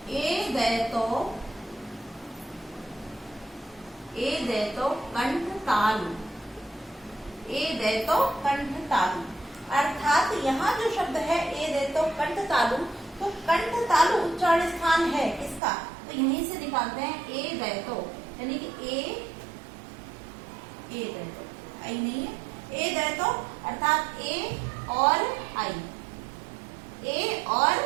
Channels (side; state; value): left; drops out; at 15.6 s